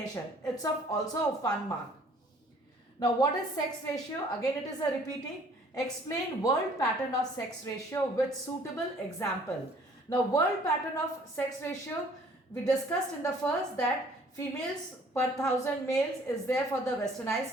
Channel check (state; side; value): normal; both; correlation 0.56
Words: It's also a fun mark. Now what is sex ratio? Again it is a repeating. Explain world pattern of sex ratio with suitable example. Now world pattern of sex ratio, we discussed in the first that females per 1000 males is there for the